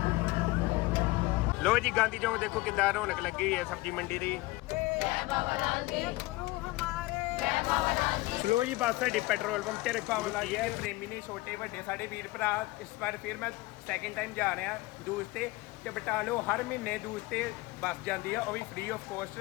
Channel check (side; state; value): right; quieter; 20.5 dB